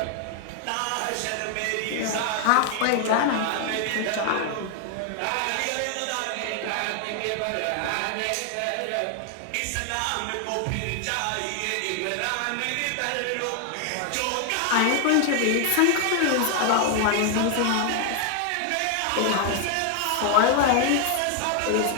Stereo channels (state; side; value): different; both; correlation 0.00